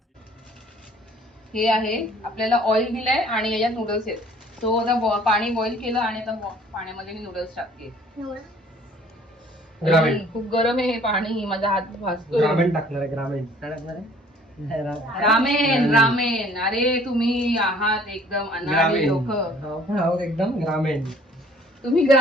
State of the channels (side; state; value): both; normal; correlation 0.55